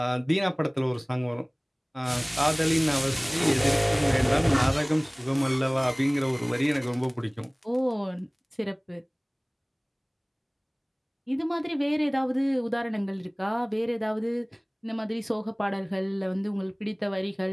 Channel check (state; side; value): identical; both; correlation 1.00